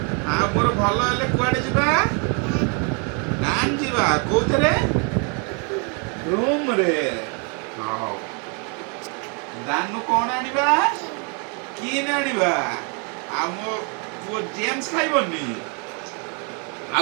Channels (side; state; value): left; quieter; 36.6 dB